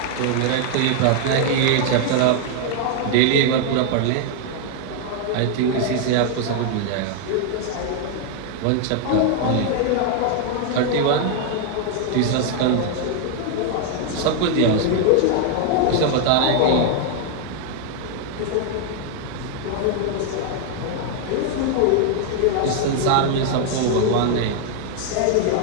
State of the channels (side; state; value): both; different; correlation 0.00